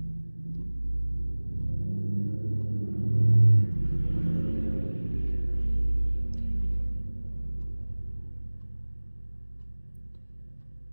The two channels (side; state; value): both; inverted; correlation -1.00